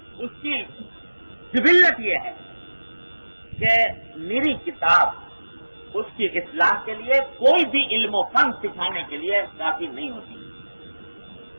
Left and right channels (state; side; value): inverted; both; correlation -1.00